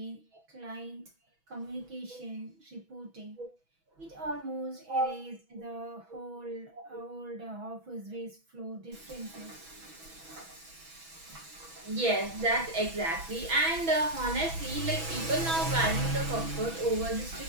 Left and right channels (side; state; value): left; late; 6.1 ms